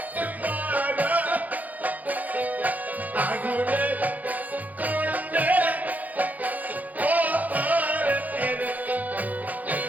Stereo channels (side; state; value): left; late; 0.079 ms